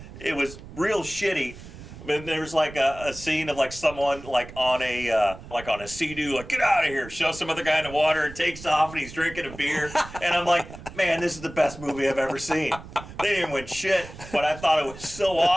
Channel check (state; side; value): noise; right; rumble, 15 dB below the sound